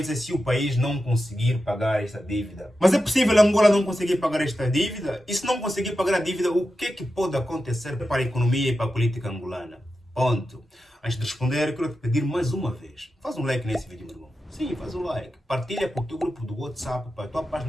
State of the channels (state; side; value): normal; both; correlation 0.90